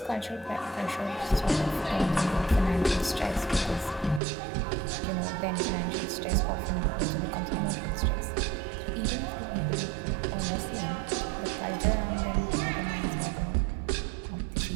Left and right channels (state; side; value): drops out; left; at 4.2 s